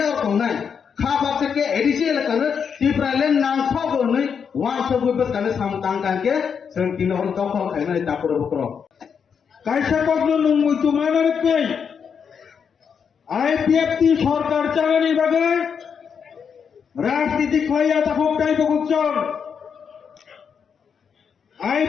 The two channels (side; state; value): right; quieter; 6.8 dB